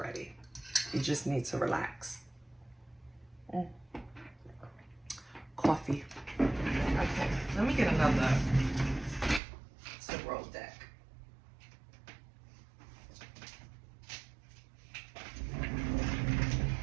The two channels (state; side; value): drops out; left; at 9.4 s